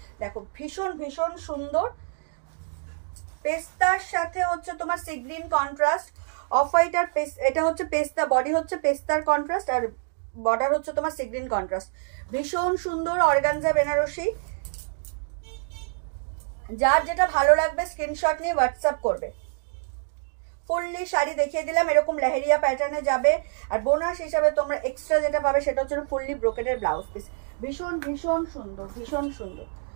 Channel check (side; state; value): left; silent; 61 dB below the other